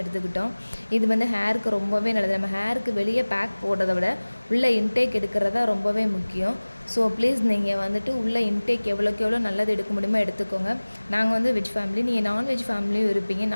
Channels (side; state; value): both; inverted; correlation -1.00